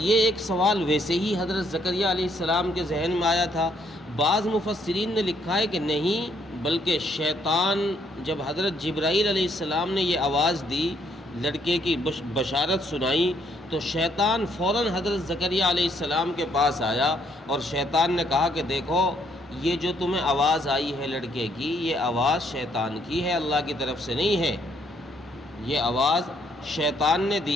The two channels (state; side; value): normal; both; correlation 0.69